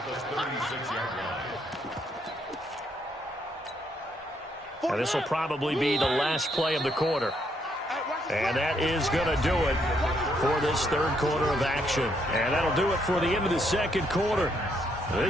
And this will probably be the last play of the quarter. And that is going to do it for this 3rd quarter of action. And that'll do it for the end of the 2nd quarter.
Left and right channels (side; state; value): both; normal; correlation 0.73